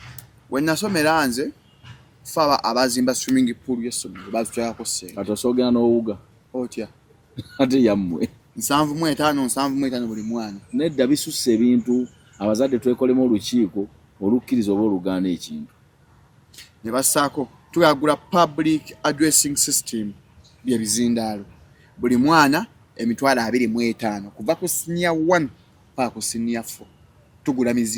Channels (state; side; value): identical; both; correlation 1.00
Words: we nasomera nze faba abazimba swimming pool y'essomero bazitwalako ssente kati osoogera n'owuga otya ate yammwe 7,5 buli mwana nedda bisusse ebintu abazadde twekolemu olukiiko olukkiriza oba olugaana ekintu ne bassaako tuyagula public addressing system byebizindaalo buli mwana emitwalo 25 kuva ku senior 1 paka ku senior 4 tugula